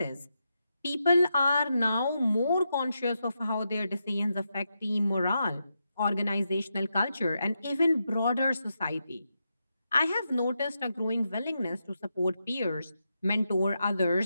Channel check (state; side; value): inverted; both; correlation -0.85